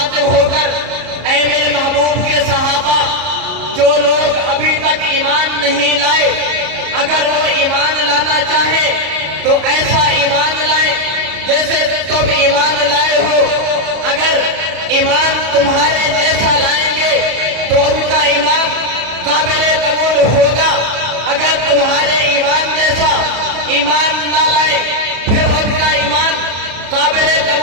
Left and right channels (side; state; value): left; late; 34 ms